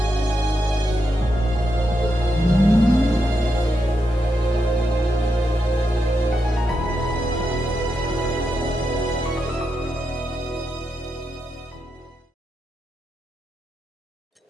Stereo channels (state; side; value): normal; both; correlation 0.84